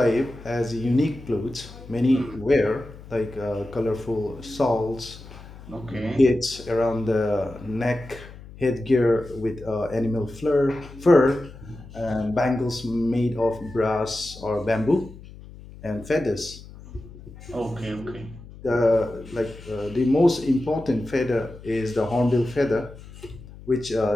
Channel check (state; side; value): noise; left; hum, 17 dB below the sound